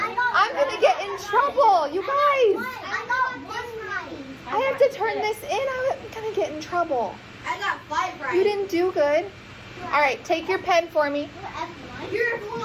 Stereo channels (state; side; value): identical; both; correlation 1.00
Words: gonna get in trouble, you guys. I got 1 right. I have to turn this in. I'm gonna get in trouble. I got 5 right. You didn't do good. All right, take your pen for me. You're